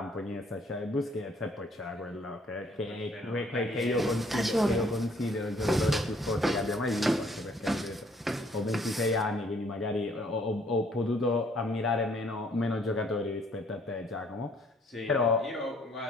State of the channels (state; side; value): normal; both; correlation 0.63